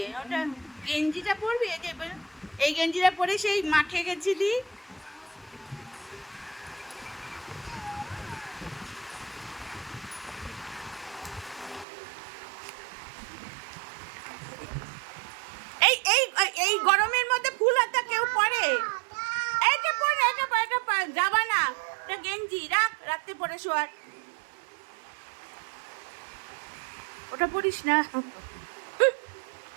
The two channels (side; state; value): left; drops out; at 11.9 s